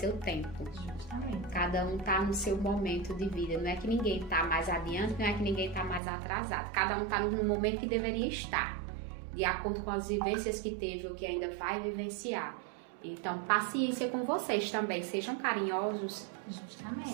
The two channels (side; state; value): left; drops out; at 6.0 s